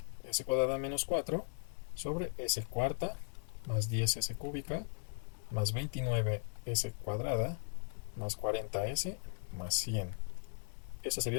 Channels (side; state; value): right; silent; digital silence